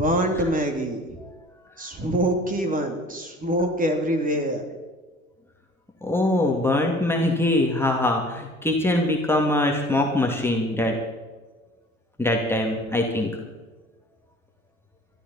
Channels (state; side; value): normal; both; correlation 0.49